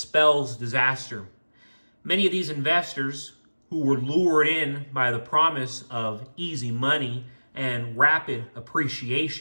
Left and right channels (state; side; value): inverted; both; correlation -1.00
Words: disaster. Many of these investors who were lured in by the promise of easy money and rapid